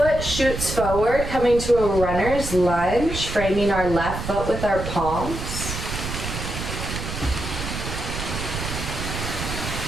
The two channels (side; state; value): right; noise; rumble, 6 dB below the sound